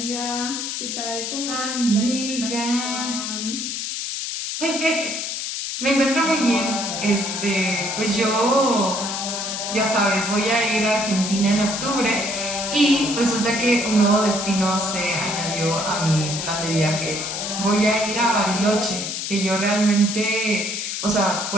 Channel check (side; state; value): left; noise; hiss, 4 dB below the sound